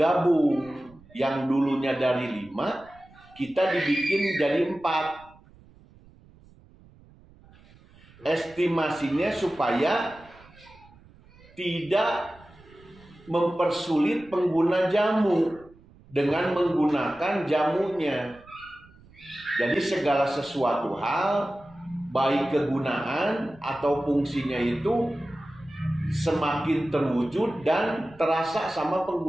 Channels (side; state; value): right; noise; rumble, 26 dB below the sound